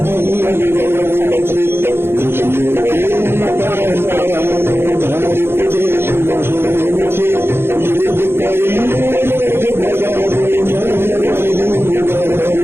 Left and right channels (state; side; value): late; left; 0.11 ms